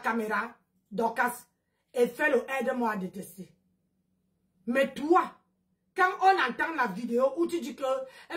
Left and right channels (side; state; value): both; identical; correlation 1.00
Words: Dorcas, et faire le aide-moi à détester. Mais toi, quand on entend la vidéo où tu dis que